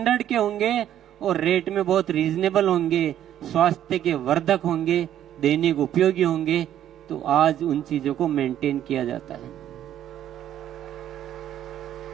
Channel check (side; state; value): left; quieter; 11.1 dB